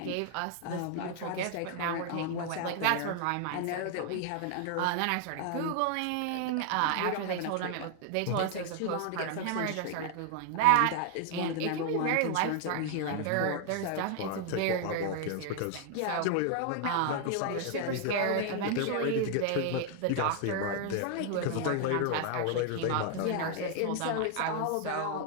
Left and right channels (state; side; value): different; both; correlation 0.00